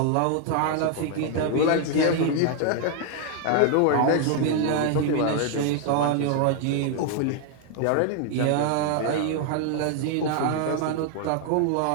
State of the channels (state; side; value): different; both; correlation 0.00